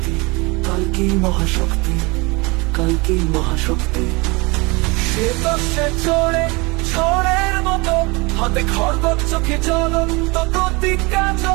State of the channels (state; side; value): quieter; left; 26.2 dB